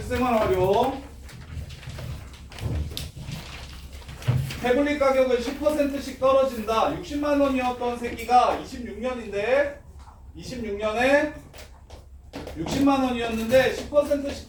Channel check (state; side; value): identical; both; correlation 1.00